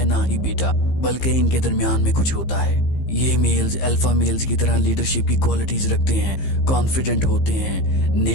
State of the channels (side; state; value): right; late; 15 ms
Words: ना ही बीटा, बल्कि इनके दरमियान में कुछ होता है। ये मेल्स अल्फा मेल्स की तरह लीडरशिप की क्वालिटीज रखते हैं, कॉन्फिडेंट होते हैं,